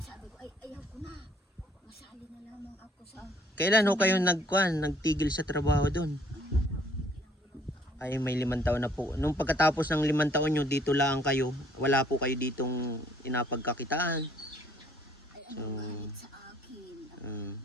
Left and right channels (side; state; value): both; normal; correlation 0.62